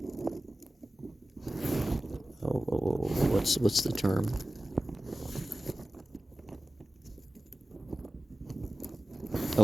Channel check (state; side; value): normal; both; correlation 0.95